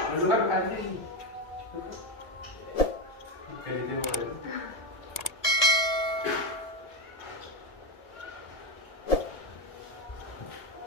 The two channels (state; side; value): late; right; 1.7 ms